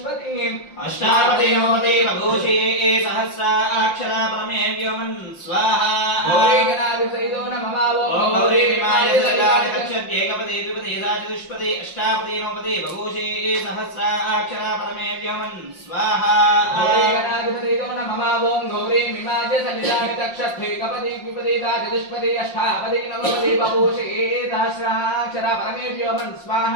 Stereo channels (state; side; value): late; right; 5.7 ms